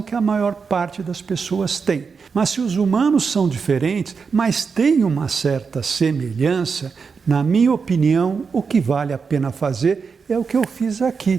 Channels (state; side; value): quieter; left; 5.4 dB